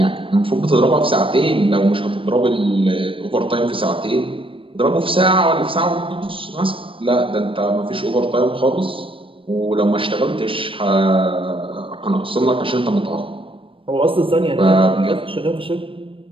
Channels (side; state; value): left; late; 0.25 ms